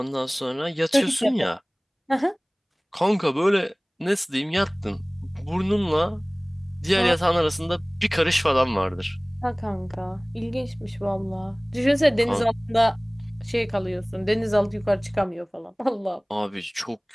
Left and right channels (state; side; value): identical; both; correlation 1.00